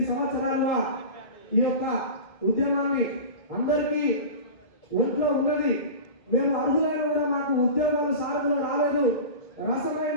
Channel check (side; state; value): right; late; 2.3 ms